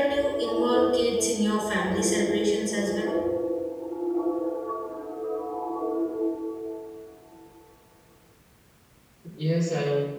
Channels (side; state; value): both; identical; correlation 1.00